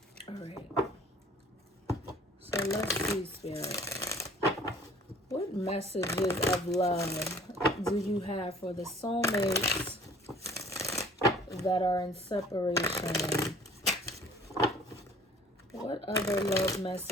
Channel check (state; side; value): normal; both; correlation 0.52